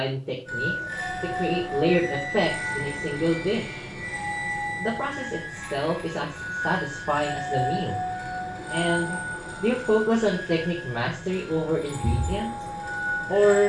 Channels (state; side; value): identical; both; correlation 1.00